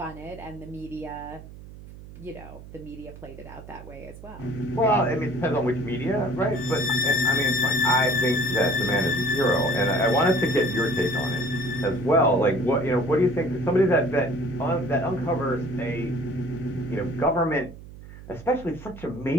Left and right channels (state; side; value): noise; right; hum, 16 dB below the sound